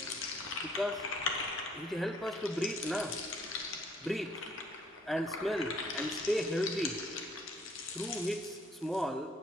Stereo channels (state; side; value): normal; both; correlation 0.63